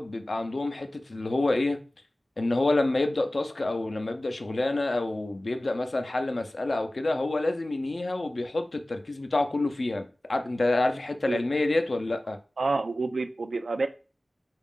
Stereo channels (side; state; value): both; normal; correlation 0.97